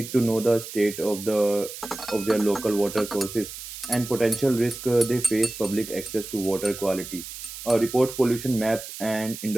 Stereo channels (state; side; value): noise; right; hiss, 11 dB below the sound